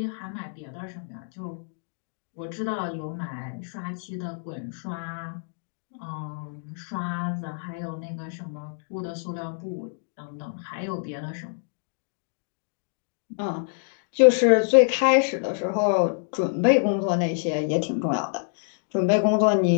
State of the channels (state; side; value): silent; right; digital silence